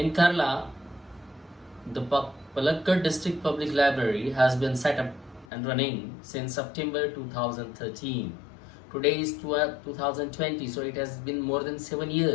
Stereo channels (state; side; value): drops out; right; at 5.5 s